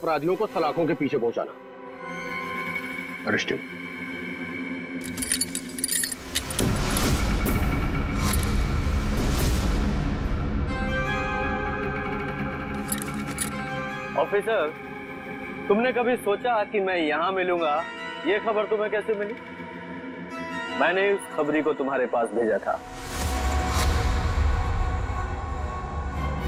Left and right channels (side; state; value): both; identical; correlation 1.00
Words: को सलाखों के पीछे पहुंचाना। अरेस्टेड। ऑफिसर तुमने कभी सोचा कि मैं यहां मिलूंगा? ये खबर तुम्हें कैसे मिली? मैंने उस खबरी को तुम्हारे पास भेजा था।